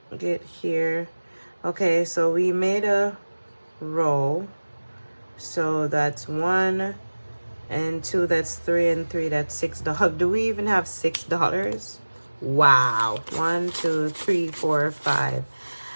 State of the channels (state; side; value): inverted; both; correlation -1.00